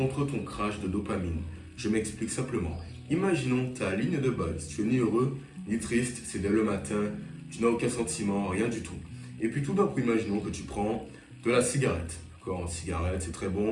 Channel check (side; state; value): both; identical; correlation 1.00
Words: ton crash de dopamine. Je m'explique simplement. Imaginons ta ligne de base. Tu es ni heureux ni triste, c'est dès le matin, tu n'as aucun sentiment, rien du tout. Et puis tout d'un coup, imaginons que tu prends de la cigarette. D'accord, une cigarette, c'est très